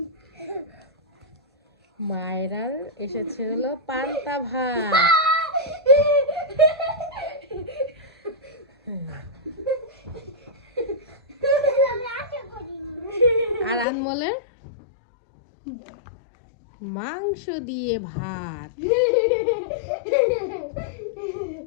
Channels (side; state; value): right; drops out; at 13.9 s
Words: মায়েরার এসেছে হলো পান্তা ভাত। আর আনমোলের মাংস দিয়ে ভাত।